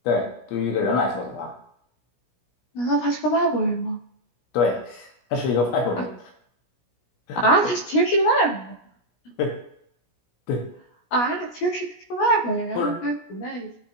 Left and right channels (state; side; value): late; right; 17 ms